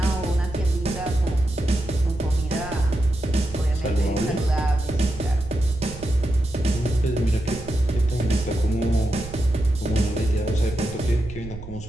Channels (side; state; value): right; noise; rumble, 12 dB below the sound